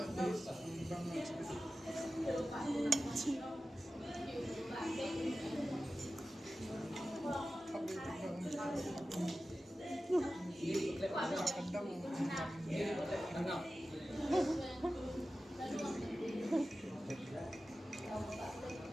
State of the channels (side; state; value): both; normal; correlation 0.94